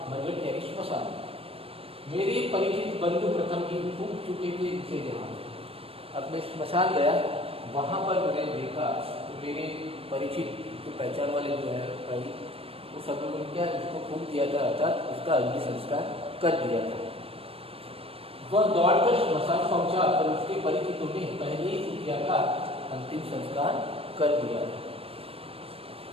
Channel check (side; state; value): left; late; 0.28 ms